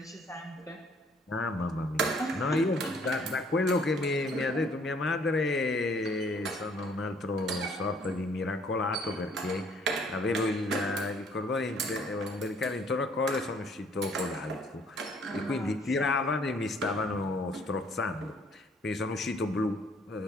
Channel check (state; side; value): normal; both; correlation 0.61